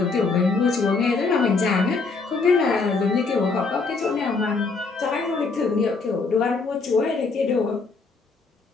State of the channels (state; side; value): quieter; right; 4.3 dB